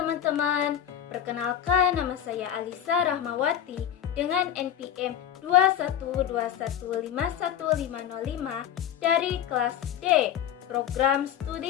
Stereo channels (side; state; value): right; quieter; 9.8 dB